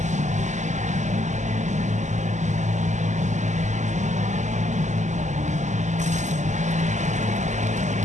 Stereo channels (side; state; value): left; late; 0.34 ms